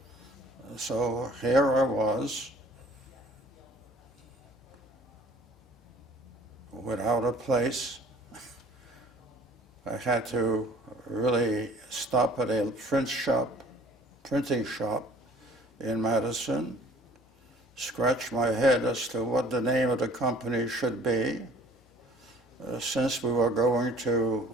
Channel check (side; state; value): both; normal; correlation 0.51